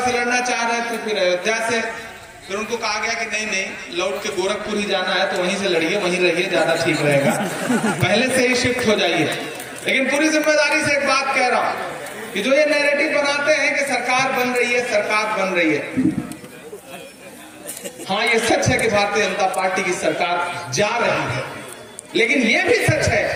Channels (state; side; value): identical; both; correlation 1.00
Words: से लड़ना चाह रहे थे, फिर अयोध्या से, फिर उनको कहा गया कि नहीं नहीं लौट के गोरखपुर ही जाना है तो वहीं से लड़िए, वहीं रहिए, ज्यादा ठीक रहेगा, पहले से ही शिफ्ट हो जाइए। लेकिन पूरी जिम्मेदारी से एक बात कह रहा हूं कि जो ये नैरेटिव बनाते हैं कि सरकार बन रही है, सरकार बन रही है, हाँ ये सच है कि भारतीय जनता पार्टी की सरकार जा रही है, लेकिन ये भी सच है